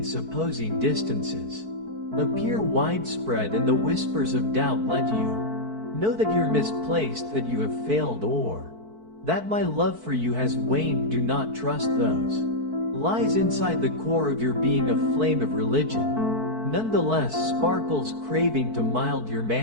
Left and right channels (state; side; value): late; left; 4.5 ms